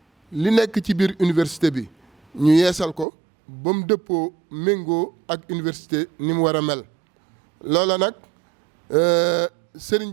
li nekk ci biir université bi ñu yeesal ko ba mu dëppoo méngoo ak université ni mu war a mel loola nag sëriñ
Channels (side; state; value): left; drops out; at 3.1 s